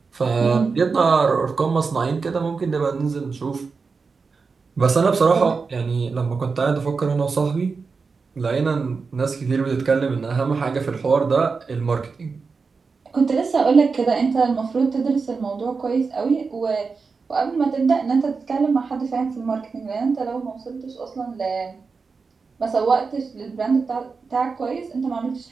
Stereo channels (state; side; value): quieter; left; 4.8 dB